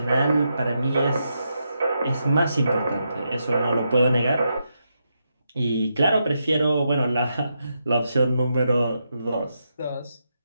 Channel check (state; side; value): inverted; both; correlation -0.83